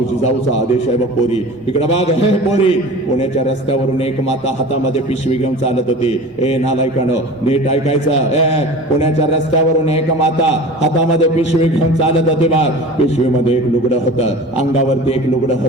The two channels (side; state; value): both; normal; correlation 0.37